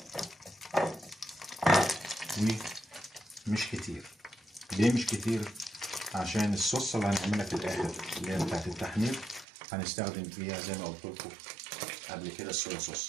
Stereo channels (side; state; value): left; drops out; at 9.5 s